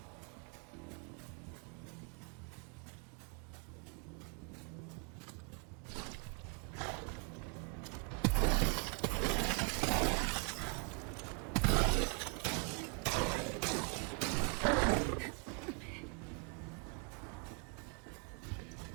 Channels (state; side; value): quieter; left; 36.8 dB